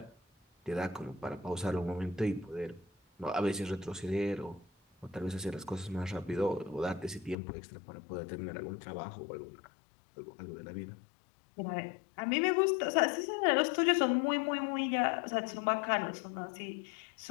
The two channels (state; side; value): drops out; right; at 7.4 s